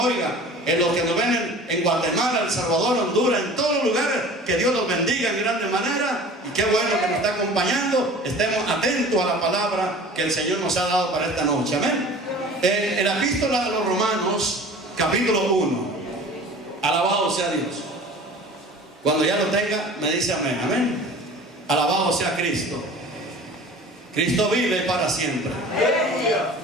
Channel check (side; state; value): both; normal; correlation 0.42